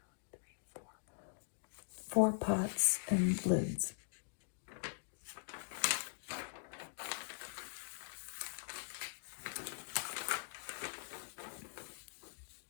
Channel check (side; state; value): right; silent; digital silence